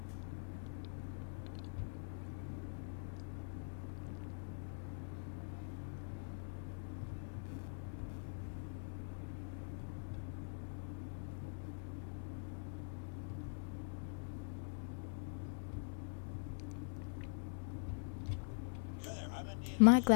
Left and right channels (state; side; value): silent; right; digital silence